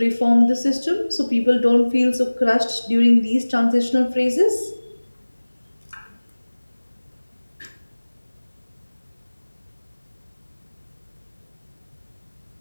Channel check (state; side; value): inverted; both; correlation -1.00